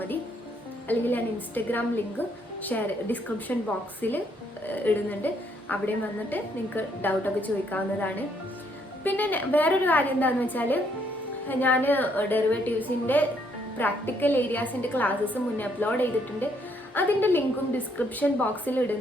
അല്ലെങ്കിൽ ഞാൻ ഇൻസ്റ്റഗ്രാം ലിങ്ക് ഡിസ്ക്രിപ്ഷൻ ബോക്സിൽ ഇടുന്നുണ്ട്. അവിടെ വന്നിട്ട് നിങ്ങൾക്ക് ഡൗട്ടൊക്കെ ചോദിക്കാവുന്നതാണ്. പിന്നെ വേറൊരു കാര്യം എന്താണെന്ന് വെച്ചാൽ, ഞാൻ ഡെറിവേറ്റീവ്സിൻ്റെ പ്രാക്ടിക്കൽ ഏരിയാസിൻ്റെ ക്ലാസ്സസ് മുന്നേ അപ്ലോഡ് ചെയ്തിട്ടുണ്ട്. അതിൻ്റെ ലിങ്കും ഡിസ്ക്രിപ്ഷൻ ബോക്സിൽ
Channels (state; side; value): normal; both; correlation 0.70